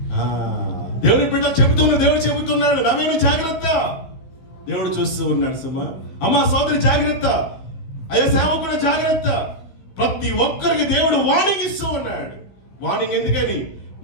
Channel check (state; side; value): late; right; 15 ms